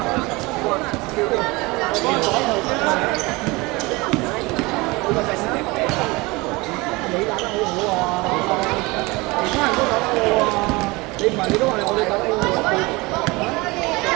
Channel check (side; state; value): left; quieter; 23.6 dB